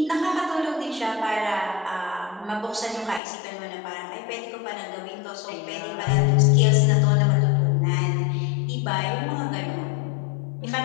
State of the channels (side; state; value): right; drops out; at 3.2 s